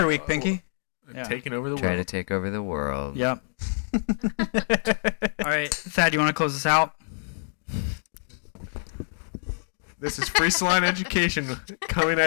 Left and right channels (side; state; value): right; silent; digital silence